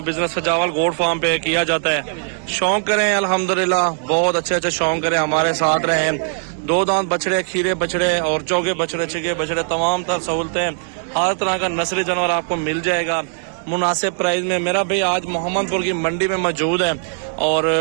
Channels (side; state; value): left; silent; digital silence